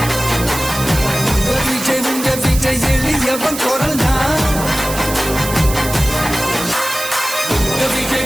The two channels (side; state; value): right; noise; hiss, 8 dB below the sound